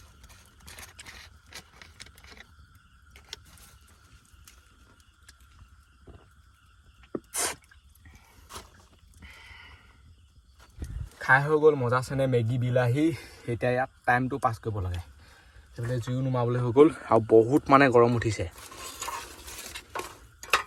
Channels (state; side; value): identical; both; correlation 1.00